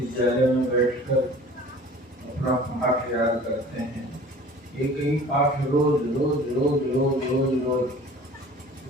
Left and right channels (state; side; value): normal; both; correlation 0.45